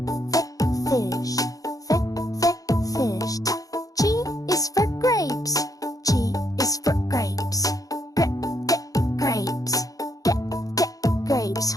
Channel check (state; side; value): late; right; 0.17 ms